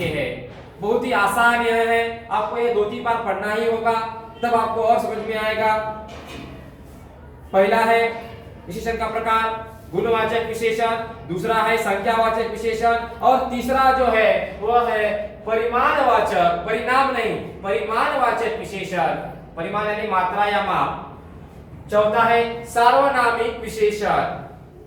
हैं। बहुत ही आसान यह है, आपको ये 2-3 बार पढ़ना ही होगा, तब आपको और समझ में आएगा। पहला है विशेषण का प्रकार गुणवाचक विशेषण, दूसरा है संख्यावाचक विशेषण और तीसरा जो है वह है परिमाणवाचक, परिणाम नहीं, परिमाणवाचक विशेषण, परिमाण यानी मात्रा या माप। चौथा है सार्वनामिक विशेषण।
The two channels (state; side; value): identical; both; correlation 1.00